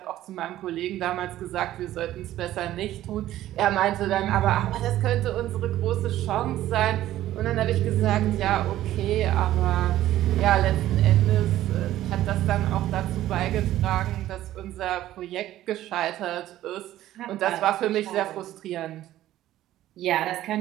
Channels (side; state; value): left; quieter; 13.8 dB